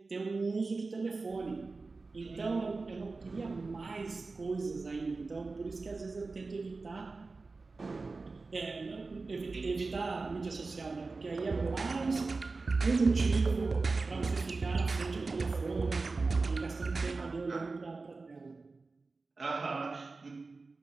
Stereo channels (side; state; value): left; quieter; 3.8 dB